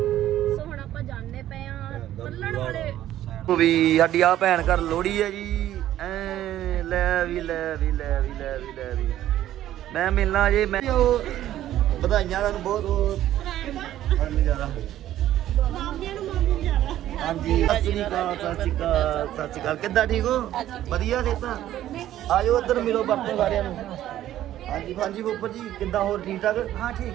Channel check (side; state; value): left; quieter; 12.8 dB